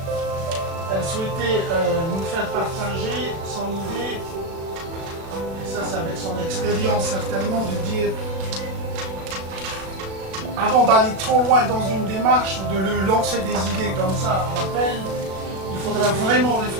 elle souhaitait nous faire partager son idée, et ça c'est avec son expérience certainement, de dire avant d'aller trop loin dans une démarche ou de lui lancer des idées comme ça à l'appel, il faudra vraiment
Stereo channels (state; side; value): late; left; 36 ms